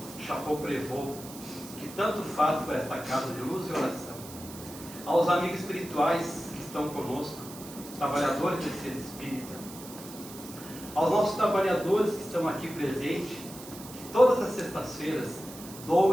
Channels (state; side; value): noise; right; hiss, 15 dB below the sound